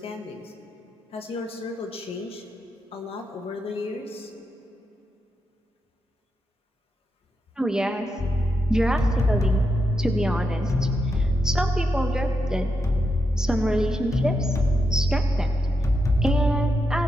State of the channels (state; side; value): normal; both; correlation 0.84